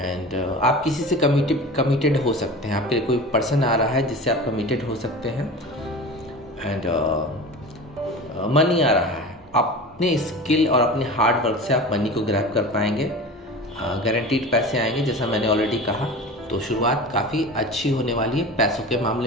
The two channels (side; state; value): both; normal; correlation 0.34